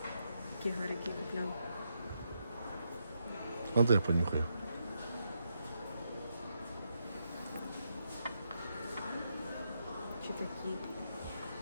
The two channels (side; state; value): both; inverted; correlation -0.81